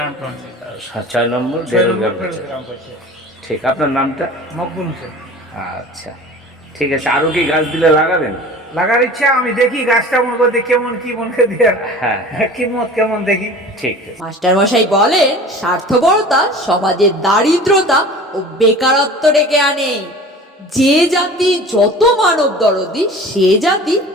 পঞ্চায়েত। 6 নম্বর বেরেল গ্রাম পঞ্চায়েত। ঠিক, আপনার নামটা? মকবুল হোসেন। আচ্ছা ঠিক আছে। আরো কি গাছ দিলে লাগাবেন? লাগার ইচ্ছা, আমি দেখি গাছটা মনে করতে কেমন কি মনে করে দিয়ে কিমত কেমন দেখি। ঠিক। মাস্টার মশাই বলেন, স্বার্থপরতা সমাজের দারিদ্রতা ও বেকারত্ব ডেকে আনে। যে জাতি যত মানব দরদি সে জাতি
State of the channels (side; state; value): both; normal; correlation 0.40